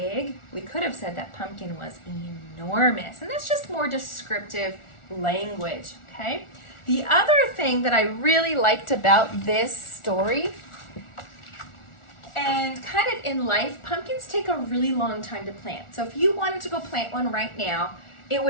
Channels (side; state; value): right; late; 1.4 ms